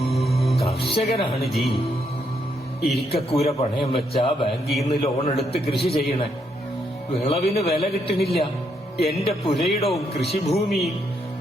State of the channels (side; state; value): both; normal; correlation 0.76